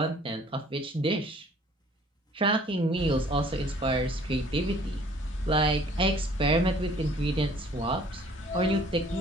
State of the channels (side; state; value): both; normal; correlation 0.55